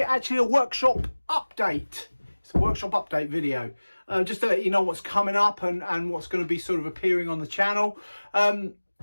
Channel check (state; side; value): inverted; both; correlation -1.00